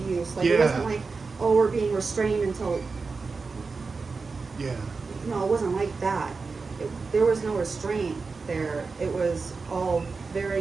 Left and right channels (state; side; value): quieter; left; 4.4 dB